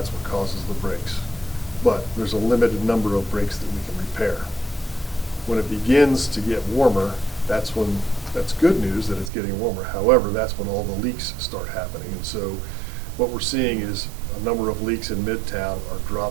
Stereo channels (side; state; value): left; drops out; at 9.3 s